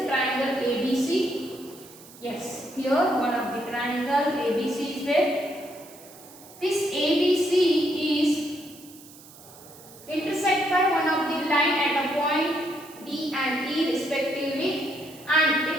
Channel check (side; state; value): right; noise; hiss, 21 dB below the sound